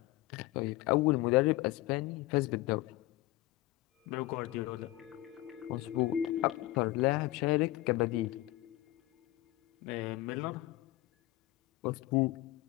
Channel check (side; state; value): right; quieter; 17.7 dB